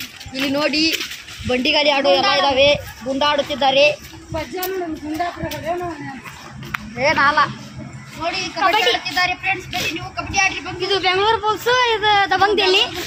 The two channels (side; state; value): both; identical; correlation 1.00